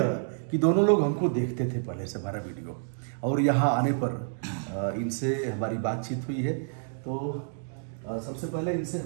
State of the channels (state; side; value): silent; left; digital silence